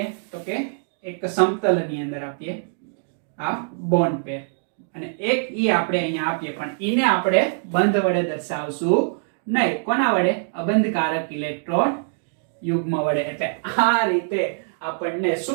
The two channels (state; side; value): silent; left; digital silence